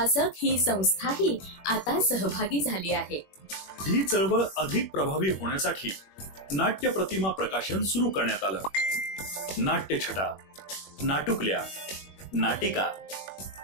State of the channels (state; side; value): late; right; 21 ms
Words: ही संस्थाही आता सहभागी झाली आहे. ही चळवळ अधिक प्रभावी होण्यासाठी नाट्य प्रतिमा प्रकाशन सुरू करण्यात आलं. नाट्यछटा, नाटुकल्या, नाटिका,